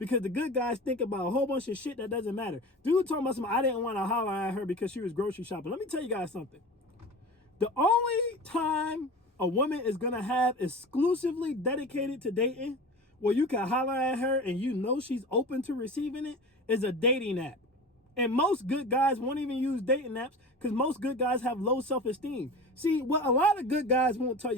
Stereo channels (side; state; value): both; normal; correlation 0.33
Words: the good guys think about a whole bunch of shit that doesn't matter. Dude talking about something, I didn't want to holler at her because she was grocery shopping. Let me tell you guys something. The only time a woman is going to have exclusively dedicated to dating, where you can holler at her and you know she's open to receiving it, is a dating app. And most good guys won't even use dating apps because most good guys have low self-esteem. See, what a lot of good guys won't tell